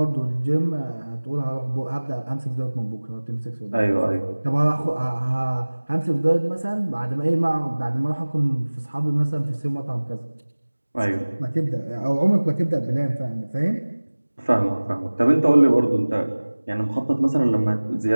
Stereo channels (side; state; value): both; inverted; correlation -1.00